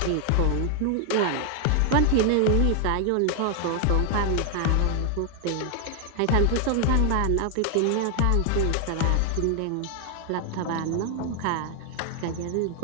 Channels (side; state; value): both; different; correlation 0.00